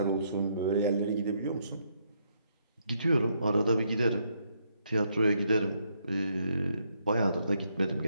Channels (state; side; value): inverted; both; correlation -0.74